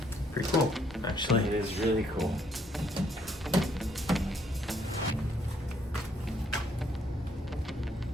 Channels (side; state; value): both; normal; correlation 0.69